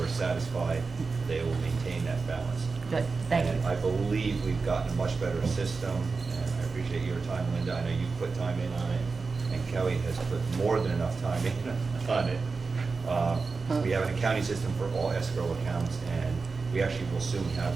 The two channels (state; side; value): quieter; left; 4.4 dB